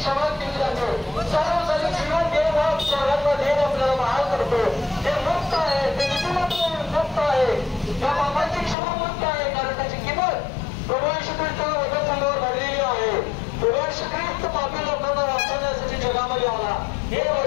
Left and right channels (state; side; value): drops out; right; at 8.8 s